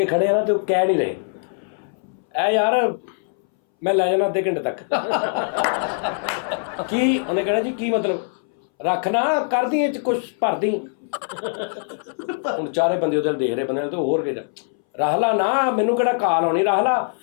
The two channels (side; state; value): right; silent; 62 dB below the other